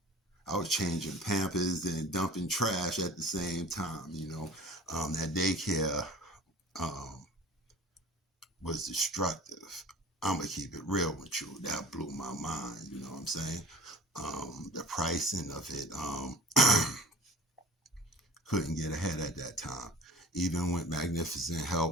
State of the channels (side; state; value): both; normal; correlation 0.44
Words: was changing Pampers and dumping trash at the same time, you know. That daycare was destructive. I'm going to keep it real with you. That blew my mind, you know what I'm saying? The pricing of it, couldn't get ahead at that time. Even with magnificent